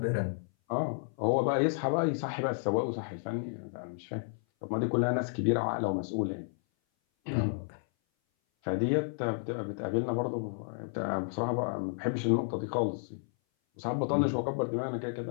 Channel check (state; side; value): silent; right; 57 dB below the other